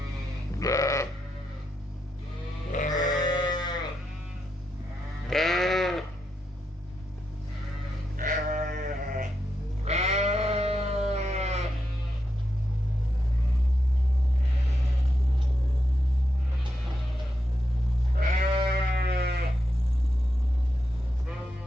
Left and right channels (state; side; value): normal; both; correlation 0.85